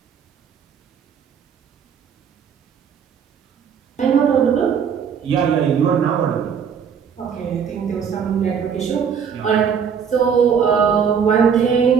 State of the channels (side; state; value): left; quieter; 7.1 dB